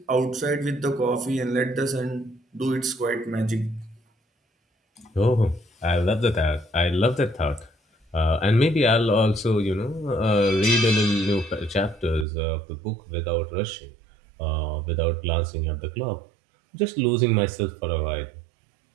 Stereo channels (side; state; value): left; drops out; at 12.2 s